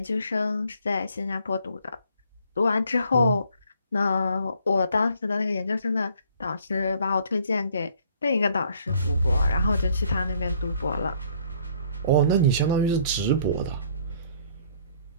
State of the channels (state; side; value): inverted; both; correlation -0.61